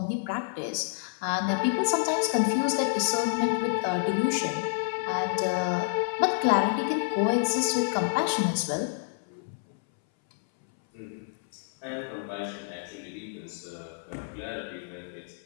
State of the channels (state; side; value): silent; right; 59 dB below the other